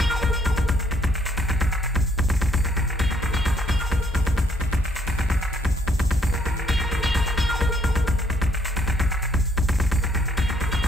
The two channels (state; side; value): normal; both; correlation 0.68